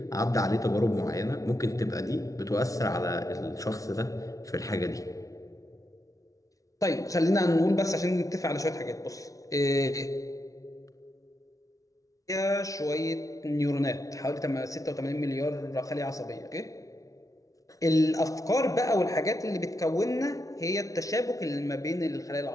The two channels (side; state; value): right; late; 0.17 ms